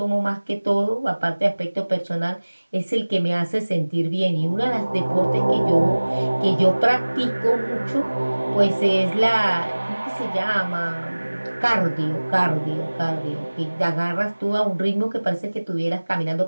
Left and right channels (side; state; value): both; inverted; correlation -1.00